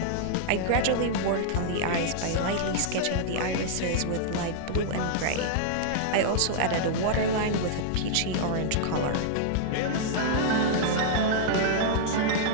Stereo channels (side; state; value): both; different; correlation -0.01